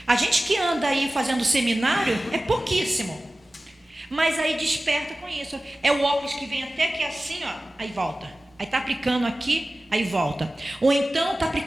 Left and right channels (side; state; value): both; normal; correlation 0.96